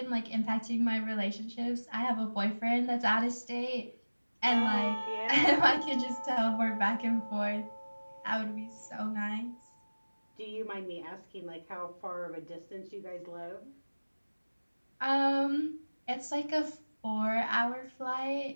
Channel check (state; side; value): inverted; both; correlation -1.00